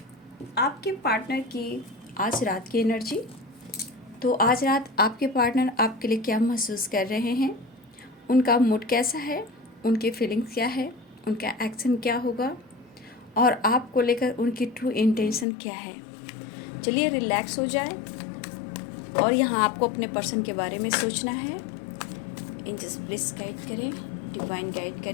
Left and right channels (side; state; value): right; drops out; at 15.5 s